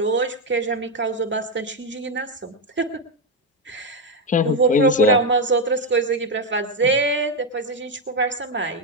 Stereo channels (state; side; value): normal; both; correlation 0.07